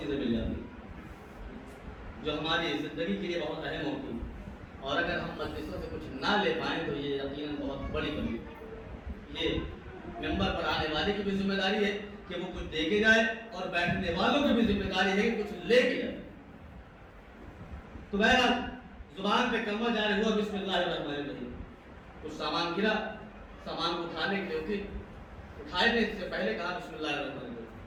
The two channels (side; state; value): both; identical; correlation 1.00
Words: مل جاتی ہیں جو ہماری زندگی کے لیے بہت اہم ہوتی ہیں. اور اگر ہم مجلسوں سے کچھ نہ لے پائیں تو یہ یقیناً بہت بڑی کمی. یہ ممبر پر آنے والے کی بھی ذمہ داری ہے کہ وہ کچھ دے کے جائے اور بیٹھنے والوں کی بھی ذمہ داری ہے کہ کچھ لے کے جائے. تو بہرحال زبان پہ کلمہ جاری ہوا بسم اللہ الرحمن الرحیم. کچھ سامان گرا، سامان کو اٹھانے کے لیے اٹھائے نے اس سے پہلے کہا بسم اللہ الرحمن الرحیم.